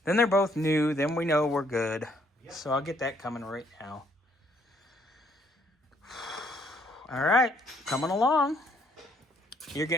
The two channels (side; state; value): both; normal; correlation 0.68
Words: Then they're both new. Then we know we're good. Yep. So I'll get that coming right now. All right, coming along. You're